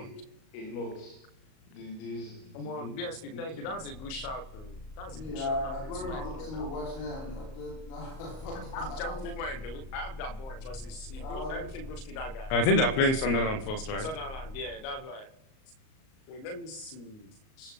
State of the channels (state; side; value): late; right; 38 ms